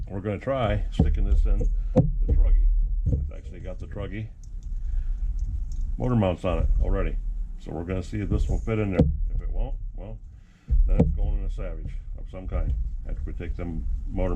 we're gonna try sticking this in the truggy. It's actually got the truggy motor mounts on it already. So we're gonna see if this will fit in there. If it won't, well, then it's going in a Savage of some kind. After we take them motor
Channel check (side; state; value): both; identical; correlation 1.00